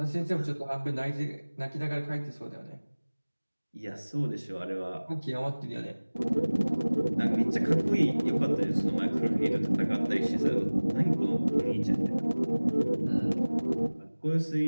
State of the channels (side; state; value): both; inverted; correlation -1.00